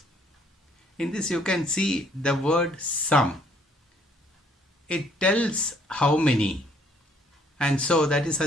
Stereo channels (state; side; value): normal; both; correlation 0.64